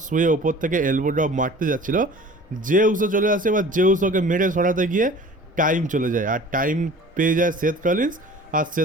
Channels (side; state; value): both; normal; correlation 0.44